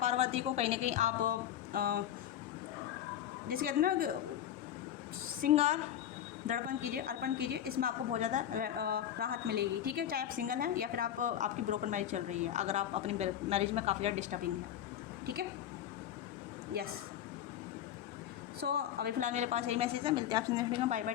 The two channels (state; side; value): quieter; right; 10.6 dB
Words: को कहीं ना कहीं आप जैसे कहते हैं ना श्रृंगार दर्पण कीजिए, अर्पण कीजिए, इसमें आपको बहुत ज़्यादा राहत मिलेगी, ठीक है। चाहे आप सिंगल हैं या फिर आपकी ब्रोकन मैरिज चल रही है, अगर आप अपनी मैरिज में काफ़ी ज़्यादा डिस्टर्बिंग है, ठीक है, यस। सो अभी फिलहाल मेरे पास यही मैसेज है। मिलते हैं आपसे नेक्स्ट वीडियो में। बाय बाय,